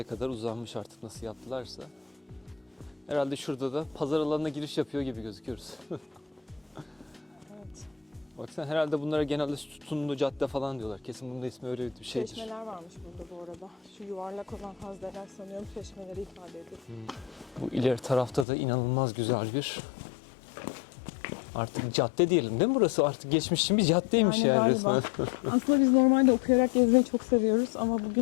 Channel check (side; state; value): right; drops out; at 18.4 s